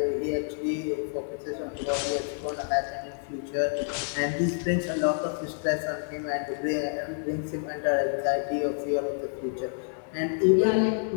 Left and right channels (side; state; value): right; silent; digital silence